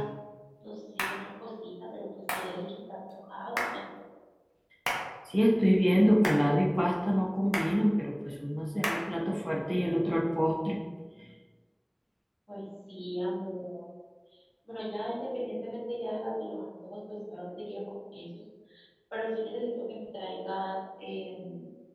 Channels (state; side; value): identical; both; correlation 1.00